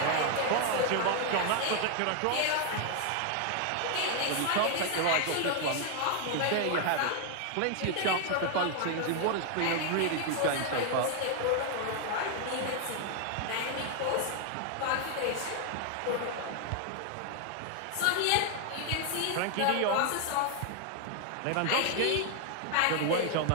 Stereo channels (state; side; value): different; both; correlation 0.00